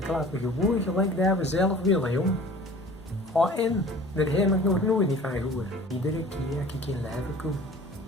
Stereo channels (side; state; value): both; normal; correlation 0.46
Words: klappen gewoon gelijk daar we zelf willen, jong. Ga in, daar heb ik nog nooit niet van gehoord. Iedere keer als ik in Leven kom,